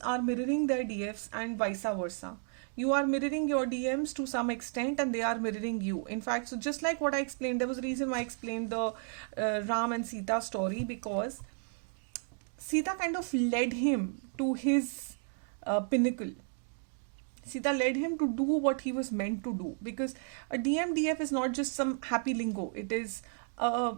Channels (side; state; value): left; silent; 56 dB below the other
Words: are mirroring their DFs and vice versa. You are mirroring your DMs to some extent and they are mirroring you. In fact, so just like what I explained, there was a reason why I explained the Ram and Sita story, because Sita kind of led him to his pinnacle. Sita led him to do what he was meant to do, because a DMDF is not just some happy lingo. It is